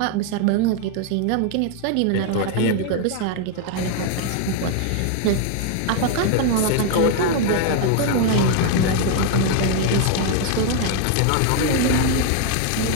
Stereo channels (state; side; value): different; both; correlation 0.00